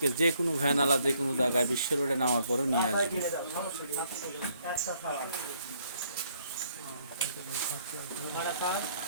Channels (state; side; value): inverted; both; correlation -0.68